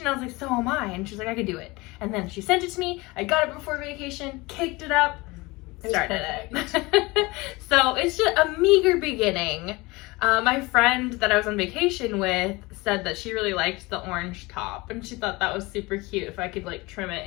I was like, so am I. And she was like, I could do it. And then she sent it to me. I got it before vacation, caked it up, started it. So it's just a meager beginning. My friend that I was on vacation with said that she really liked the orange top, and she thought that was super cute if I could like trim it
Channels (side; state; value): right; quieter; 23.1 dB